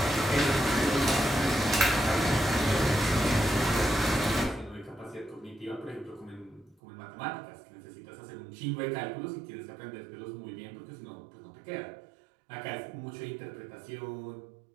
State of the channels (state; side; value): drops out; left; at 6.8 s